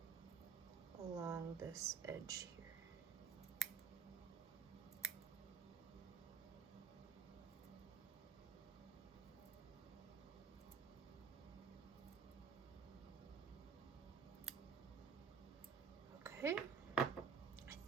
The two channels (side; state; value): left; quieter; 6.1 dB